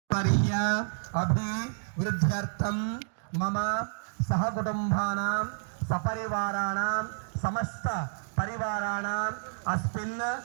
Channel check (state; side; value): silent; left; digital silence